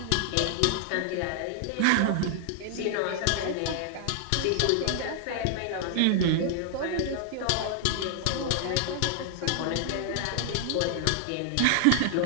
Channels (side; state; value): both; different; correlation 0.00